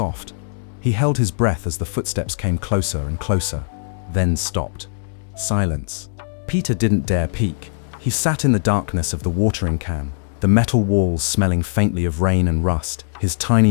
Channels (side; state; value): right; silent; digital silence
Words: He held his breath as the footsteps came closer and closer, then stopped. Silence. Peter didn't dare peek. He sat in the darkness of the watering can, the metal walls smelling faintly of rain and rust, his